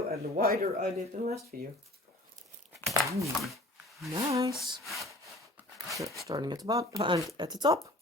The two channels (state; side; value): normal; both; correlation 0.48